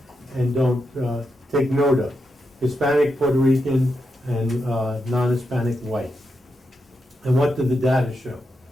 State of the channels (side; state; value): both; normal; correlation 0.85